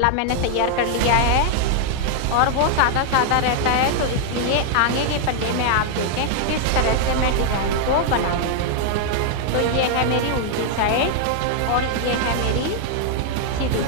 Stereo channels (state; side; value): different; both; correlation 0.00